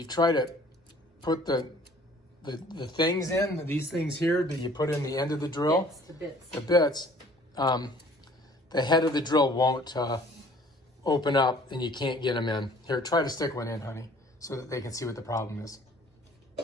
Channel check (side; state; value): both; normal; correlation 0.53